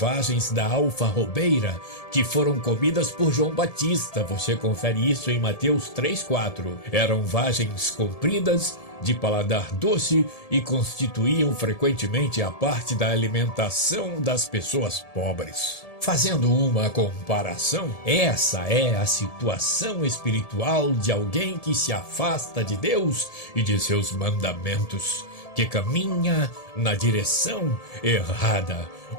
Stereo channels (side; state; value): right; late; 1.7 ms